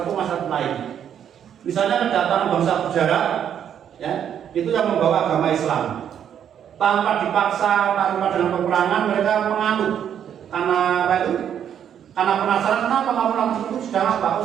ke masyarakat lain. Misalnya kedatangan bangsa berjarak, ya, itu yang membawa agama Islam. Tanpa dipaksa, tanpa dengan peperangan, mereka menganut. Karena apa itu? Karena penasaran kenapa kamu langsung itu sedang apa?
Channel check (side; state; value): left; quieter; 9.1 dB